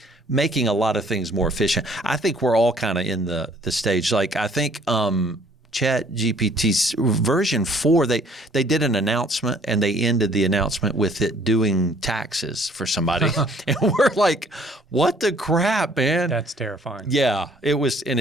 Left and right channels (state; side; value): normal; both; correlation 0.59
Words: making a lot of things more efficient. I think we're all kind of in the stage. Like I think ChatGPT's version 4, they did an announcement and they ended the announcement with it doing taxes for somebody. And we're like, what the crap, man? That's terrifying. Yeah, it was, and